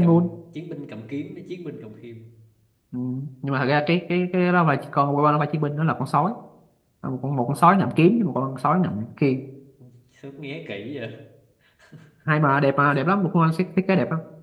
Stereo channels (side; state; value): both; identical; correlation 1.00